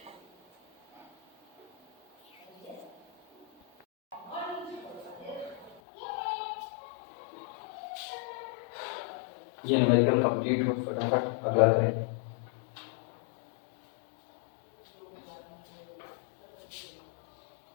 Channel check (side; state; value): right; drops out; at 5.8 s